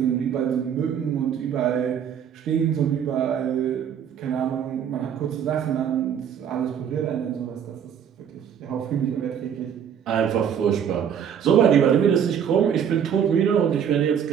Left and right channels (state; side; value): quieter; left; 8.4 dB